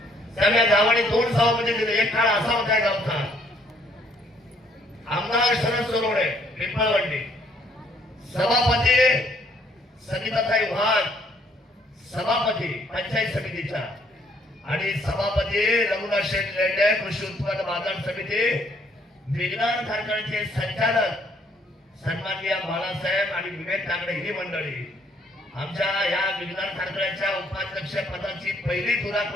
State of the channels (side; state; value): both; normal; correlation 0.66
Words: त्यामुळे गावाने 2 सभापती दिले. एक काळ असा होता गावचा, आमदार शरद सोनवणे पिंपळवंडी, सभापती सविताताई वाघ, सभापती पंचायत समितीच्या, आणि सभापती रघुनाथ शेठ लेंडे कृषी उत्पन्न बाजार समिती, विज्ञान कारखान्याचे संचालक सन्माननीय बाळासाहेब आणि विवेक काकडे ही मंडळी. आमच्या या विज्ञान कारखान्याच्या उपाध्यक्ष पदाची पहिली